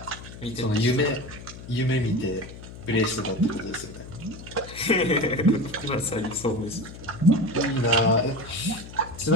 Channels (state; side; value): noise; left; hum, 14 dB below the sound